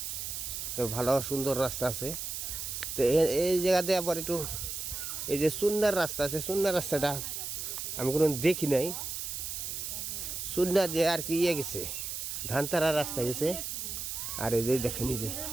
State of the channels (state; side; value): noise; right; hiss, 5 dB below the sound